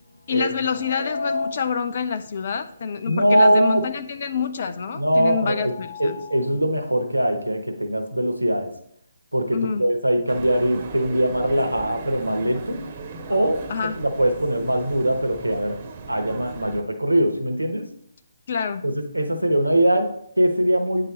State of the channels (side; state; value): both; inverted; correlation -0.89